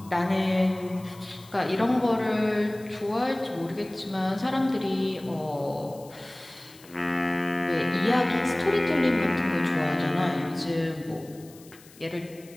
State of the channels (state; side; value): noise; left; hiss, 23 dB below the sound